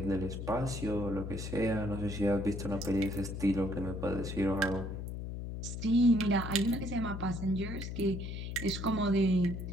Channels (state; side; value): noise; left; hum, 6 dB below the sound